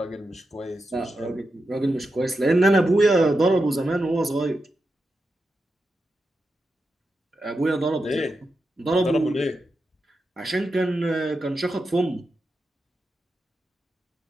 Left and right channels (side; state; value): both; normal; correlation 0.88